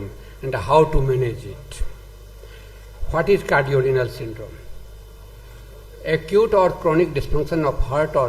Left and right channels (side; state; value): both; identical; correlation 1.00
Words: and how to manage it. What is cardiorenal syndrome? Acute or chronic dysfunction of heart